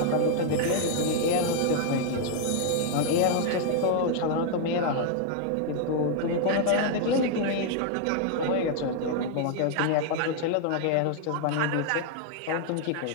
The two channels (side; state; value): both; different; correlation 0.00